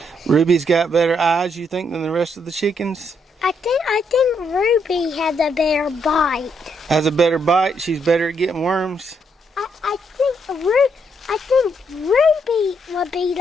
Ruby's got better eyes, you think, than the rest of the chickens? I think Ruby has a better bite. Has a better bite? She's better at getting worms? I think Ruby would be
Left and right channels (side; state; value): both; normal; correlation 0.75